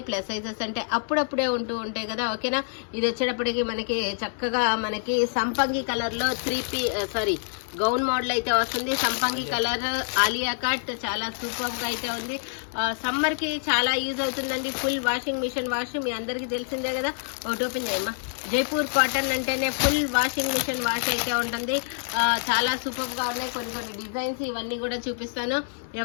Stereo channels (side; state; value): right; silent; digital silence